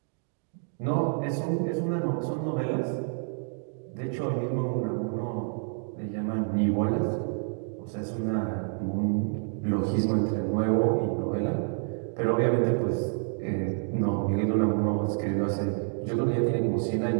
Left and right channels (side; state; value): left; silent; 56 dB below the other